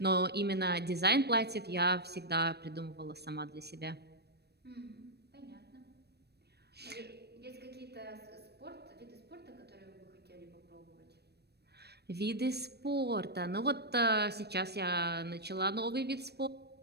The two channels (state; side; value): late; left; 0.47 ms